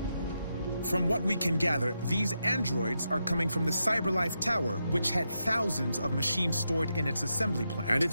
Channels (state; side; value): inverted; both; correlation -0.85